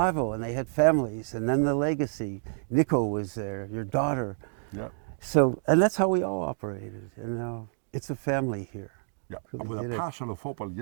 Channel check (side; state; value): left; silent; digital silence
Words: and they had families, and then the legacy. Nico was there, your daughter. Yeah. So, and that's how we all operated. You know, it's a family here. Yeah, I was a parcel of opal